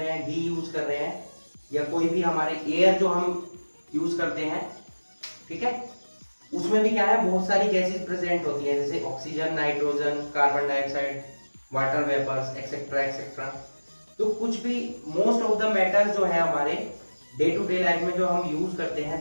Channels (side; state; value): both; inverted; correlation -1.00